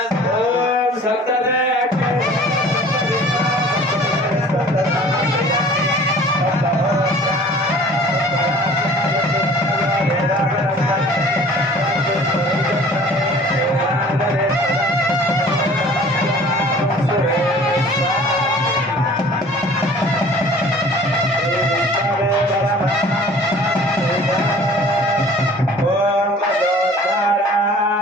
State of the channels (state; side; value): normal; both; correlation 0.48